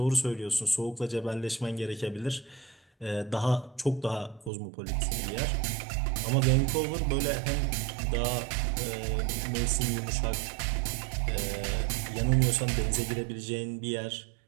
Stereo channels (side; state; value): left; drops out; at 4.5 s